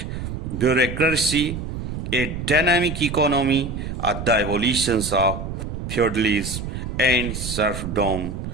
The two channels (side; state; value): right; noise; rumble, 6 dB below the sound